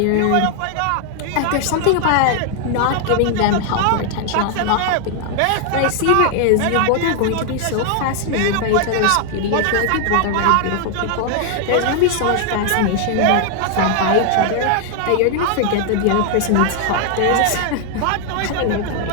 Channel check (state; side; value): different; both; correlation 0.00